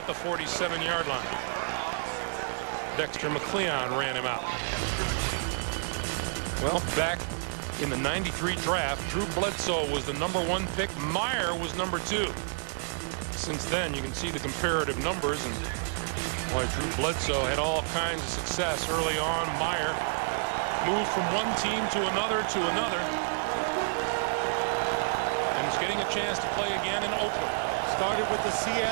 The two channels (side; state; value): left; silent; 58 dB below the other